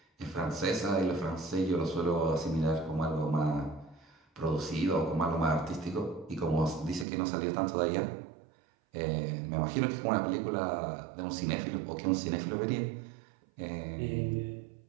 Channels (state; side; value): drops out; left; at 7.1 s